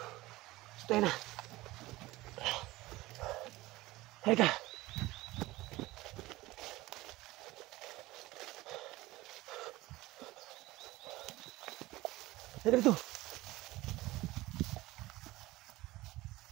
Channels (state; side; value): quieter; left; 18.9 dB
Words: So tayo na. Halika! Halika dito.